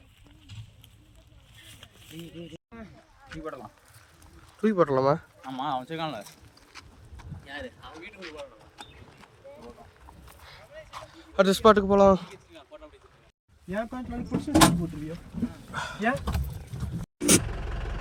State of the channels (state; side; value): identical; both; correlation 1.00